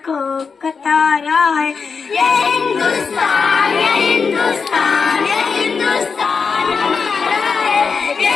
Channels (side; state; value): right; quieter; 5.4 dB